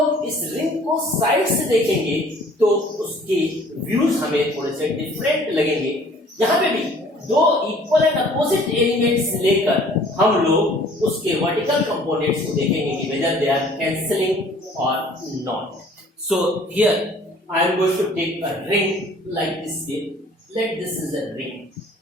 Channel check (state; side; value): normal; both; correlation 0.53